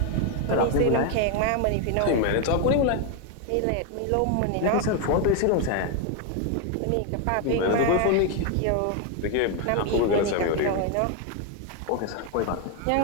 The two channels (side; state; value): both; different; correlation 0.01